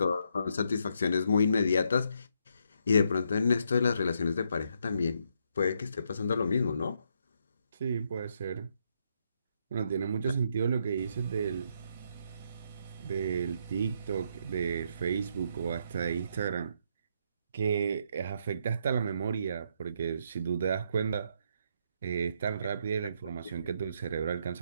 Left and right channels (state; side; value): inverted; both; correlation -0.75